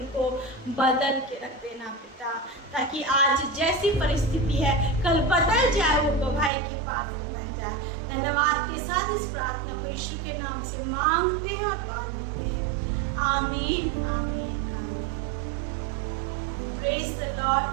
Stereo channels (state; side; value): drops out; left; at 6.5 s